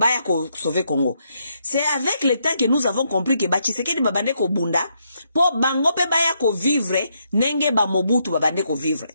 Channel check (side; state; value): both; inverted; correlation -0.77